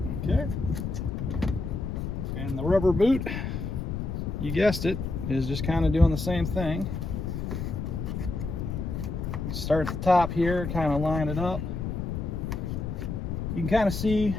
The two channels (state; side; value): noise; left; rumble, 4 dB below the sound